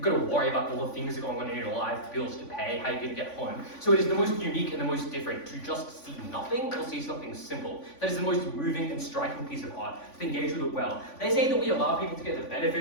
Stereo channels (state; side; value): late; right; 3.5 ms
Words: got to worry about all the things that are going on in your life, bills to pay, how you're going to get home. So it is the most unique and the most different to just see nothing or see something simple. That is the most moving and striking piece of art, to engage with it well. They say that we allow people to get the